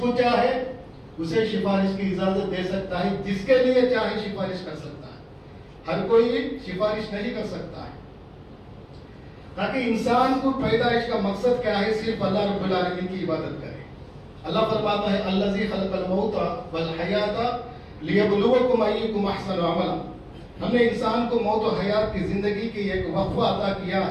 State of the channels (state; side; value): identical; both; correlation 1.00